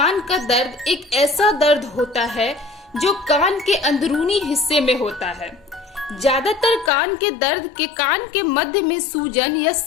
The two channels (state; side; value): drops out; right; at 6.9 s